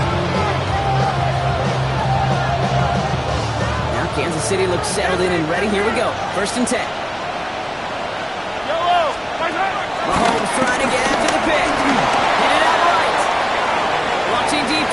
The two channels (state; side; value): identical; both; correlation 1.00